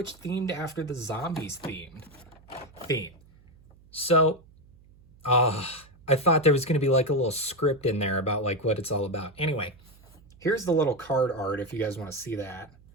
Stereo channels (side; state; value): right; noise; hum, 26 dB below the sound